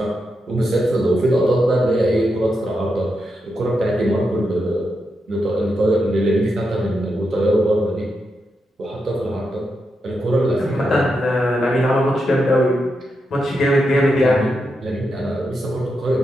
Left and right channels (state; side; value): normal; both; correlation 0.85